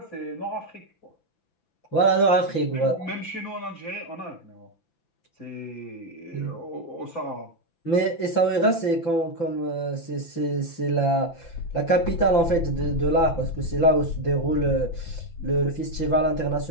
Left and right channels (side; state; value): right; late; 5.9 ms